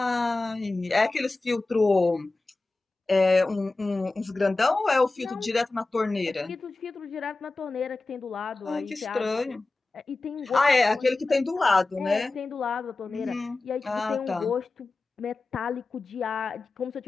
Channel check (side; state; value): right; quieter; 3.3 dB